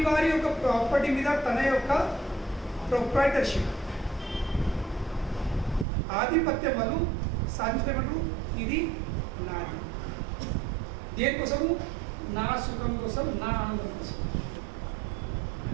యొక్క ప్రాపర్టీ మీద తన యొక్క ప్రొప్రైటర్షిప్, ఆధిపత్యం వాళ్ళు సాధించమంటారు. ఇది నాది. దేనికోసము? నా సుఖం కోసం, నా ఆనందం కోసం.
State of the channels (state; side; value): drops out; left; at 5.9 s